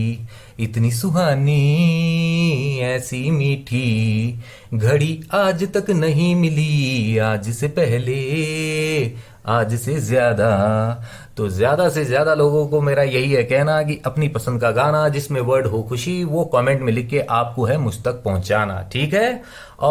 इतनी सुहानी ऐसी मीठी घड़ी आज तक नहीं मिली, आज से पहले आज से ज्यादा। तो ज्यादा से ज्यादा लोगों को मेरा यही है कहना कि अपनी पसंद का गाना जिसमें वर्ड हो खुशी वो कमेंट में लिख के आपको है मुझ तक पहुंचाना, ठीक है।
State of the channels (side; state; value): both; identical; correlation 1.00